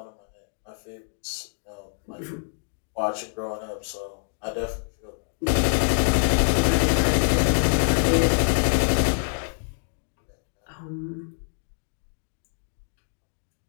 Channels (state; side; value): silent; right; 61 dB below the other